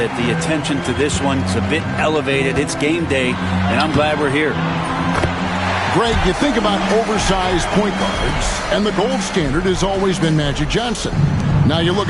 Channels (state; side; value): identical; both; correlation 1.00